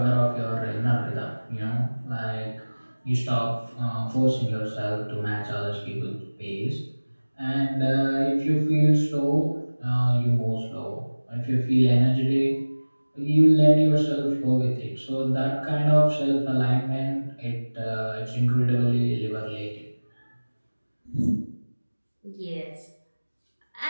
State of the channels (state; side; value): inverted; both; correlation -1.00